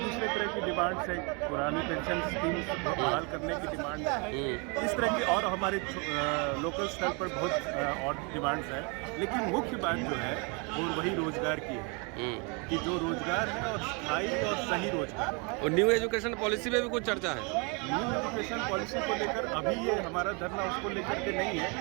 तरह की डिमांड्स है, पुरानी पेंशन स्कीम्स बहाल करने की डिमांड है, इस तरह की और हमारे लोकल स्तर पर बहुत और डिमांड्स हैं। लेकिन मुख्य बात जो है वो वही रोजगार की है कि जो रोजगार है और स्थायी और सही रोजगार है। और न्यू एजुकेशन पॉलिसी में भी कुछ चर्चा है? न्यू एजुकेशन पॉलिसी को लेकर अभी ये हमारा धरना उसको लेकर के नहीं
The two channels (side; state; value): left; quieter; 32.7 dB